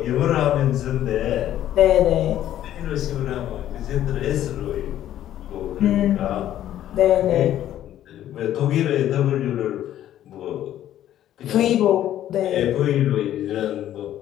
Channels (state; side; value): quieter; right; 12.0 dB